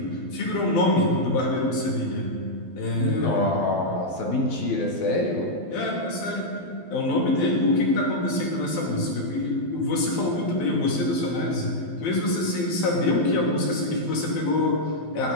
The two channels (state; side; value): late; right; 12 ms